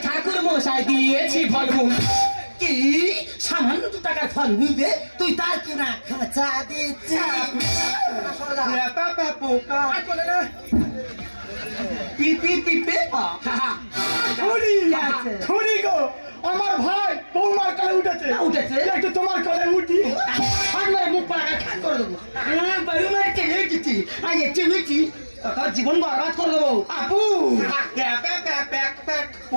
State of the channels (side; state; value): both; inverted; correlation -1.00